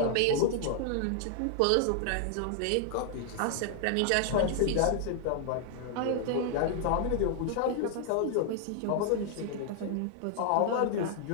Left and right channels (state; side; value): different; both; correlation 0.00